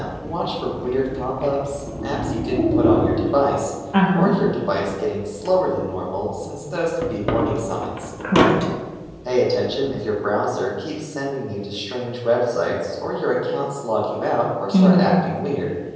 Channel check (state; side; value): identical; both; correlation 1.00